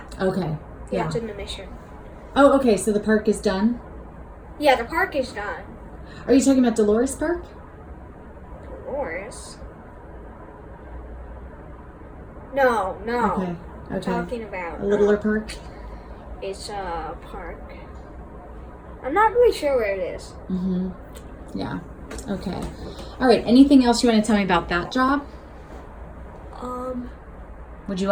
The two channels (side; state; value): both; identical; correlation 1.00